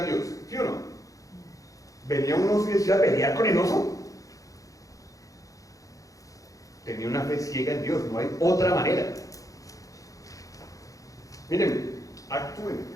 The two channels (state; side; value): late; right; 0.16 ms